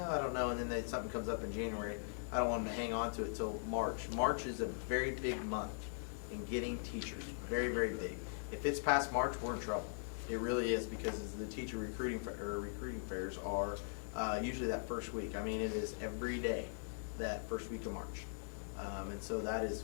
I don't know, and then something comes up in January, I don't want them to hang on to it till March. March is a very big month in getting teachers, very, very big. If it's past March, we're in trouble. It really is, because the teacher recruiting fairs are usually that first week. I mean, it is every day that first week of March, and so that is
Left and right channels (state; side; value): silent; right; 51 dB below the other